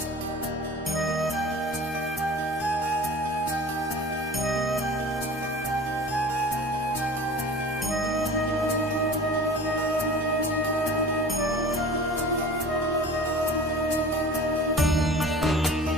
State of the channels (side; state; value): both; normal; correlation 0.41